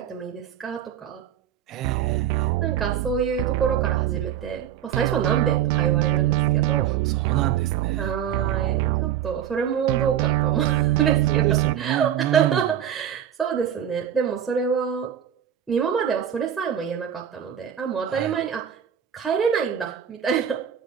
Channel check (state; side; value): quieter; left; 9.6 dB